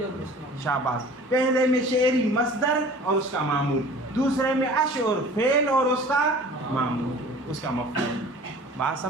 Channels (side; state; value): both; normal; correlation 0.45